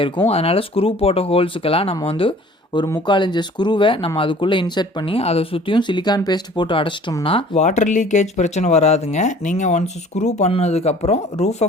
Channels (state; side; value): normal; both; correlation 0.50